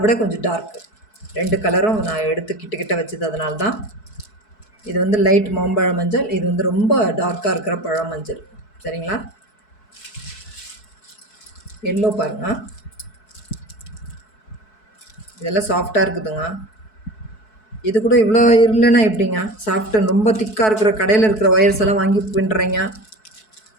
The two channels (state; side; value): late; right; 4.6 ms